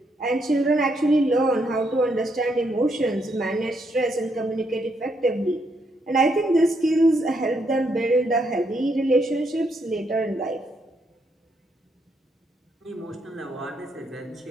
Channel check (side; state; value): both; normal; correlation 0.76